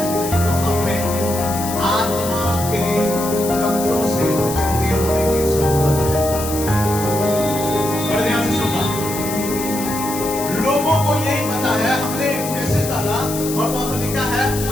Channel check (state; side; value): noise; left; hiss, 8 dB below the sound